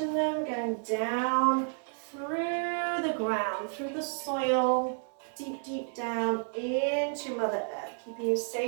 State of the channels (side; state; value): left; silent; 57 dB below the other